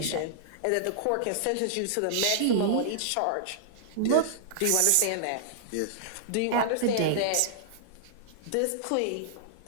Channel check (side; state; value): both; different; correlation -0.01